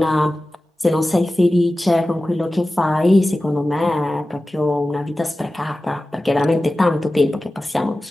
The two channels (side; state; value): both; normal; correlation 0.95